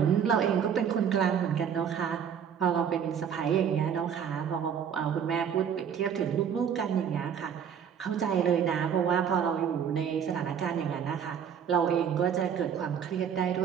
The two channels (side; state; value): left; quieter; 8.0 dB